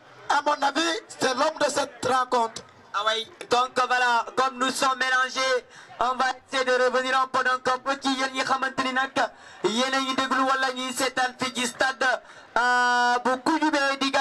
à mon avis, c'est l'homme de cette rencontre. Oui, donc voilà, comme nous sommes mélangés, on va essayer de revenir un peu donc un peu qui yéen ñi xamanteni nak yéen a ngi déglu wala ñi seetaan fi ci stade bu Koudioumbé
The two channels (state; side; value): identical; both; correlation 1.00